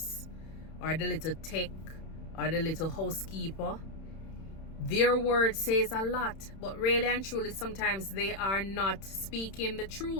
or the little tech or the little housekeeper, their word says a lot. But really and truly, sometimes they are not speaking the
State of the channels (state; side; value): late; right; 31 ms